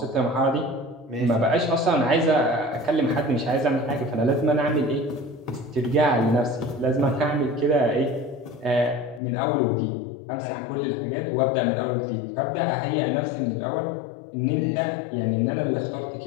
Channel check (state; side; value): drops out; right; at 9.2 s